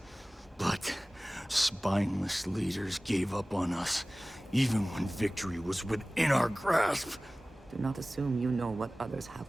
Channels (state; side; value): normal; both; correlation 0.98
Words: but spineless leaders gave up on us, even when victory was within our grasp. Do not assume you know what others have